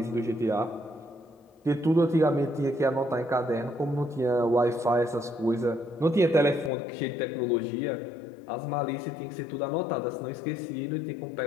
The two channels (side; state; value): right; drops out; at 6.7 s